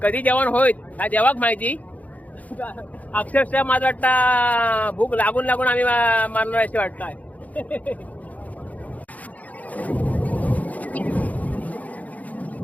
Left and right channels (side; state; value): right; late; 0.074 ms